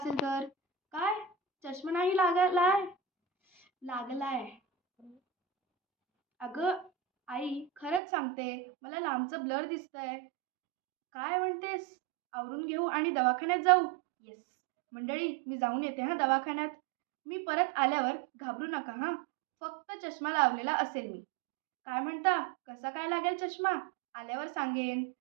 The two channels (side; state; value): left; drops out; at 8.0 s